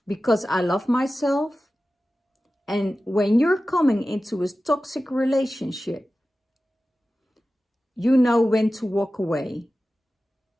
because I love myself. And when you're coming into a toxic relationship, you know when to walk away.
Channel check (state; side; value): normal; both; correlation 0.95